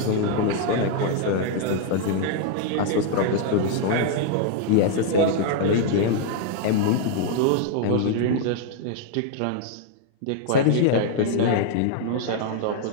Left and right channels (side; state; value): both; different; correlation 0.00